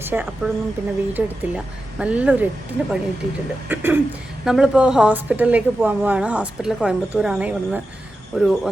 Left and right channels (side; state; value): both; normal; correlation 0.91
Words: അപ്പോഴൊന്നും പിന്നെ വീഡിയോ എടുത്തില്ല. നല്ലൊരു 8-ന് പണി കിട്ടിയിട്ടുണ്ട്. നമ്മളിപ്പോൾ ഹോസ്പിറ്റലിലേക്ക് പോകാൻ പോവാണ്. ഹോസ്പിറ്റൽ കോയമ്പത്തൂരാണ്. ഇവിടുന്ന് ഒരു